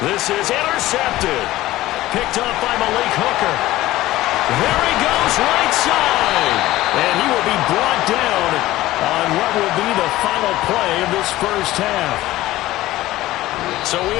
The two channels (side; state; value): right; quieter; 16.4 dB